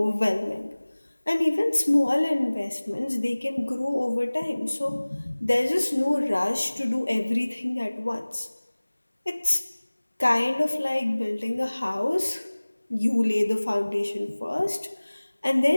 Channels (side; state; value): both; inverted; correlation -1.00